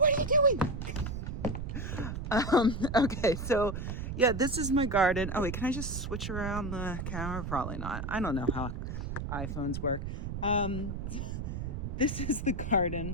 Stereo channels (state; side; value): noise; right; rumble, 5 dB below the sound